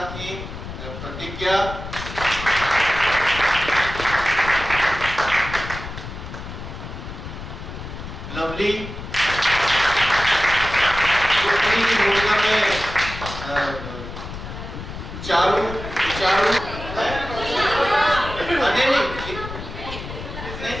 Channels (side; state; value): left; noise; rumble, 10 dB below the sound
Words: थी प्रतिज्ञा, लवली, उन्हीं की भूमिका में चारू